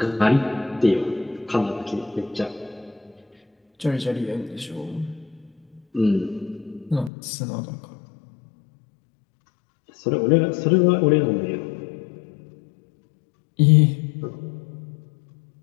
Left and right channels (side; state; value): right; drops out; at 7.1 s